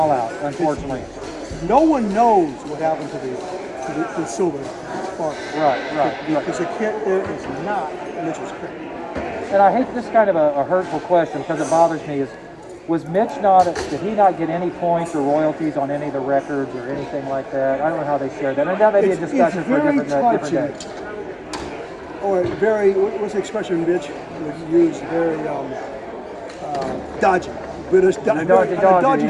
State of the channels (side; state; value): both; identical; correlation 1.00